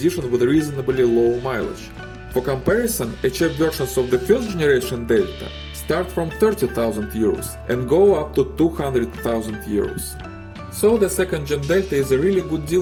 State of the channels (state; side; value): identical; both; correlation 1.00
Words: with reasonably low mileage. For comparison, HF versions of the first generation Delta start from 30,000 euros and go up to 200,000 euros. So the second gen Delta is a really good